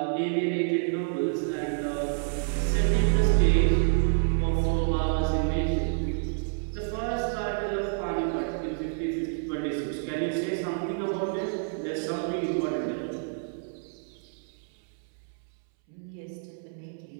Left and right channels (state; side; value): silent; left; 59 dB below the other